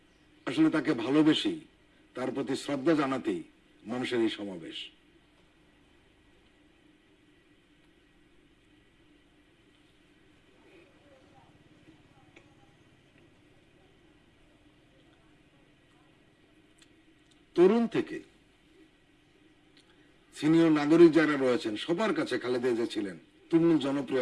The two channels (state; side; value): identical; both; correlation 1.00